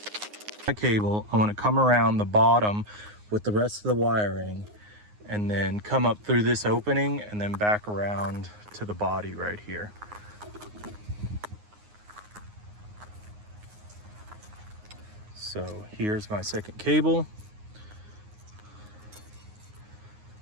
My cable, I want to come around the bottom with the rest of the wiring, and then come up through this opening and then back around to the body right here. So here's my second cable.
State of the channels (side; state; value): left; late; 9.6 ms